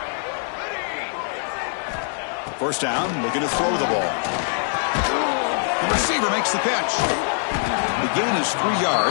First down, looking to throw the ball. The receiver makes the catch. The gain is 3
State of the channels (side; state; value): right; silent; 61 dB below the other